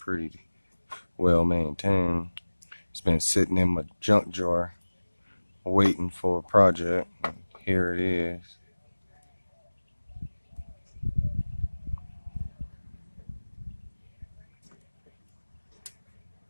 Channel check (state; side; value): inverted; both; correlation -1.00